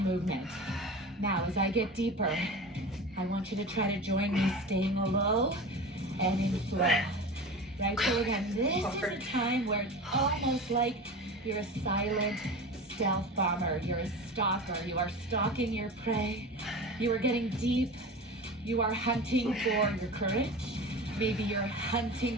Now, as I get deeper, I want you to try to join me staying low and in flow. Right, so again, this is a time where it's almost like you're a silent stealth bomber. You're a stalker. You are stalking your prey. You are getting deep. You are hunting for your courage. Maybe you're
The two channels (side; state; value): both; normal; correlation 0.32